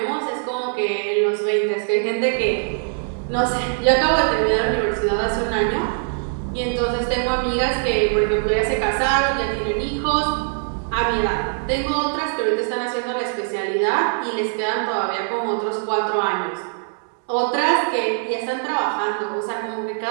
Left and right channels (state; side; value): silent; left; digital silence